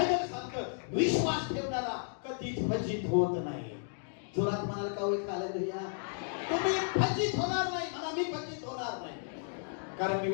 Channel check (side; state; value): right; silent; digital silence